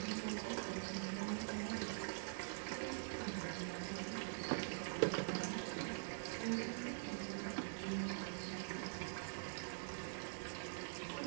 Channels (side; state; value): left; silent; digital silence